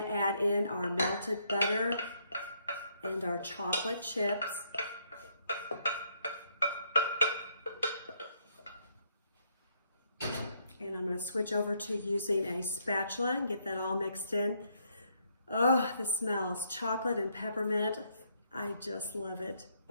add in our melted butter and our chocolate chips. And I'm going to switch over to using a spatula and get that all mixed in. Oh, the smells, chocolate and peppermint. I just love it.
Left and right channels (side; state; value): both; inverted; correlation -0.72